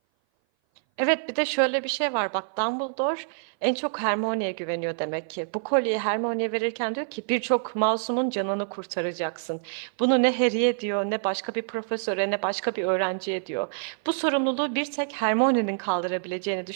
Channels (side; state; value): left; silent; 57 dB below the other